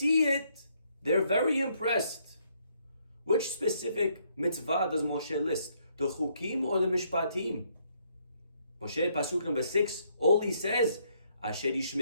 it, they're very impressed. Which specific mitzvah does Moshe list? The chukim or the mishpatim? Moshe, pasuk number 6, all he says, Asher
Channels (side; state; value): both; inverted; correlation -0.71